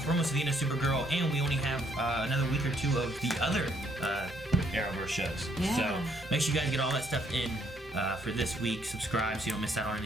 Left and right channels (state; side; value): normal; both; correlation 0.68